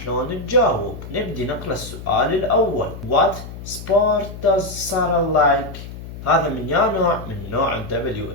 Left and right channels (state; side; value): noise; left; hum, 12 dB below the sound